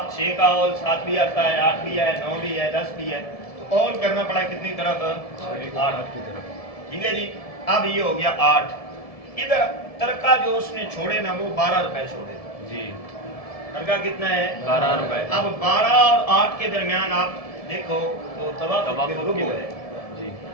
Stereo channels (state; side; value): late; right; 1.7 ms